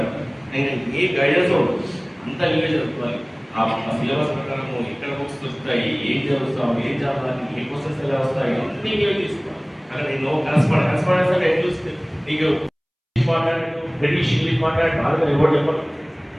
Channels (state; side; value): identical; both; correlation 1.00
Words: నేను ఏ గైడెన్స్ ఉండదు, అంతా నీవే చదువుకోవాలి. ఆ సిలబస్ ప్రకారం ఎక్కడ బుక్స్ వస్తాయి, ఏం చదువుతాం, ఏం చదవాలి, ఏ క్వశ్చన్స్ ఎలా వస్తాయి, అన్నీ నీవే తీసుకోవాలి. అక్కడ నేను కరస్పాండెన్స్ అంటే ఎట్లా చూస్తే నీకు మాట్లాడు బ్రిటిష్ ఇంగ్లీష్ మాట్లాడు బాగా ఎవరు చెప్పరు.